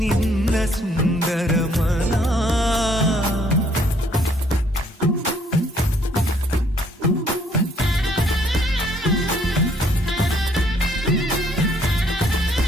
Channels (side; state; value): both; normal; correlation 0.65